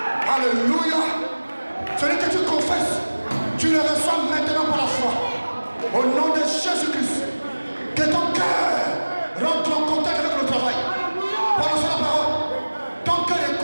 Alléluia. Celui que tu confesses, tu le reçois maintenant par la foi. Au nom de Jésus-Christ. Que ton cœur rentre en contact avec le travail. Prononce la parole. Ton cœur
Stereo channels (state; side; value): inverted; both; correlation -1.00